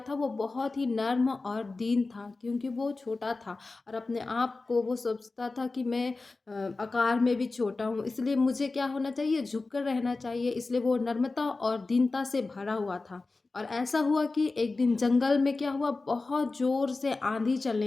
वो बहुत ही नर्म और दीन था क्योंकि वो छोटा था और अपने आप को वो सोचता था कि मैं आकार में भी छोटा हूँ, इसलिए मुझे क्या होना चाहिए, झुक कर रहना चाहिए। इसलिए वो नर्मता और दीनता से भरा हुआ था। और ऐसा हुआ कि एक दिन जंगल में क्या हुआ, बहुत ज़ोर से आंधी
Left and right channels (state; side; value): quieter; right; 3.6 dB